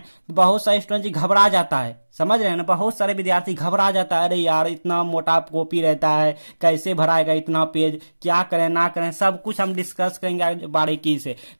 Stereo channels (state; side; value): inverted; both; correlation -1.00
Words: तो बहुत सारे स्टूडेंट घबरा जाता है, समझ रहे हैं ना, बहुत सारे विद्यार्थी घबरा जाता है, अरे यार इतना मोटा कॉपी रहता है, कैसे भराएगा इतना पेज, क्या करें ना करें, सब कुछ हम डिस्कस करेंगे बारीकी से।